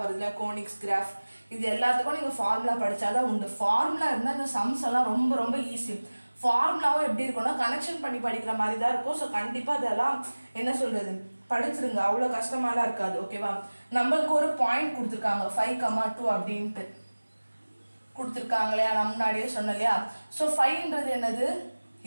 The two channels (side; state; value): both; inverted; correlation -1.00